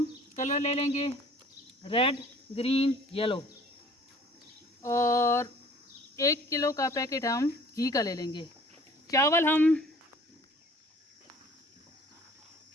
कलर ले लेंगे, रेड, ग्रीन, येलो। और 1 किलो का पैकेट हम घी का ले लेंगे। चावल हम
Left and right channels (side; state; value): both; normal; correlation 0.51